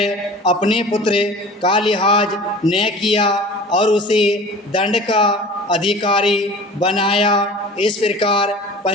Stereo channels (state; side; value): normal; both; correlation 0.41